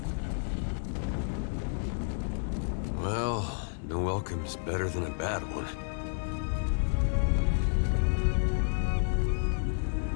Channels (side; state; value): right; silent; digital silence